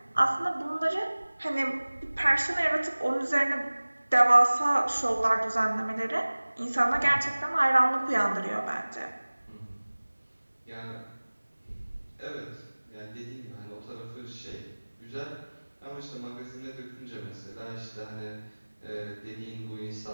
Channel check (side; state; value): both; inverted; correlation -1.00